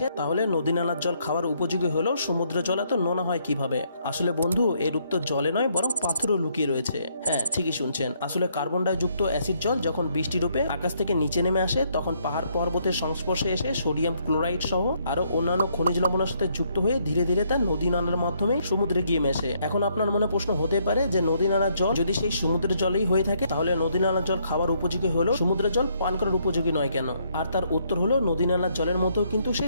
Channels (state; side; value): inverted; both; correlation -0.71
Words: তাহলে নদী নালার জল খাওয়ার উপযোগী হলেও সমুদ্রের জল এত নোনা হয় কিভাবে? আসলে বন্ধু, এর উত্তর জলে নয় বরং পাথরও লুকিয়ে রয়েছে। হ্যাঁ, ঠিকই শুনছেন। আসলে কার্বন ডাই যুক্ত অ্যাসিড জল যখন বৃষ্টি রূপে আকাশ থেকে নিচে নেমে আসে, তখন পাহাড় পর্বতের সংস্পর্শে এসে সোডিয়াম ক্লোরাইড সহ আরো অন্যান্য খনিজ লবণের সাথে যুক্ত হয়ে ধীরে ধীরে তা নদী নালার মাধ্যমে সমুদ্রে গিয়ে মেশে। এখন আপনার মনে প্রশ্ন হতে পারে যে নদী নালার জল যদি সেই সমুদ্রের জলেই হয়ে থাকে, তাহলে নদী নালার জল খাওয়ার উপযোগী হলেও সমুদ্রের জল পান করার উপযোগী নয় কেন? আর তার উত্তর হলো, নদী নালার জলের মধ্যেও কিন্তু সেই